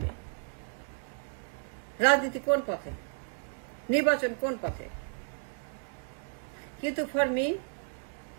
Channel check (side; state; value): left; silent; 56 dB below the other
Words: রাজনীতি কোন পথে, নির্বাচন কোন পথে। কিন্তু ফর মি,